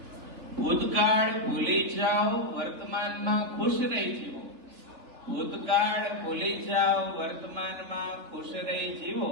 ભૂતકાળ ભૂલી જાઓ, વર્તમાનમાં ખુશ રહી જીવો. ભૂતકાળ ભૂલી જાઓ, વર્તમાનમાં ખુશ રહી જીવો.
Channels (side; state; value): left; late; 3.2 ms